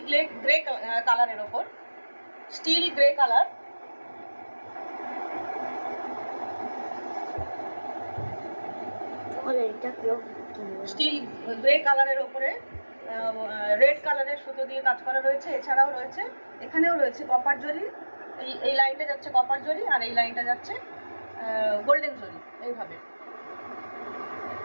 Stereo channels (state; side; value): inverted; both; correlation -1.00